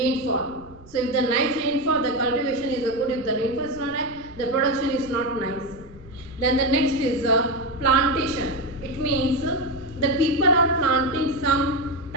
So if the nice rainfall, the cultivation is good. If the rainfall is not high, the production is not nice. Then the next is plantation. It means the people are planting some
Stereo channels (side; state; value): right; noise; rumble, 22 dB below the sound